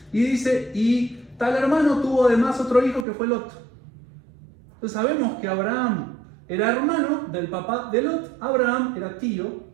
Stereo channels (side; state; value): left; drops out; at 3.1 s